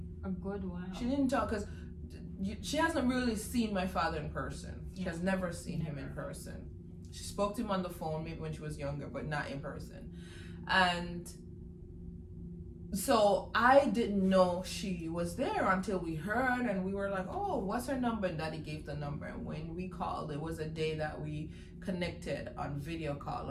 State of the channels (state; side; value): identical; both; correlation 1.00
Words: a good while. She didn't talk because she hasn't really seen my father in person. She has never seen him in person. She spoke to him on the phone maybe when she was younger, but not in person. And so I didn't know she was there until we heard, and we were like, oh, what's her number? And Daddy gave the number. And when we called, it was a day that we connected on video call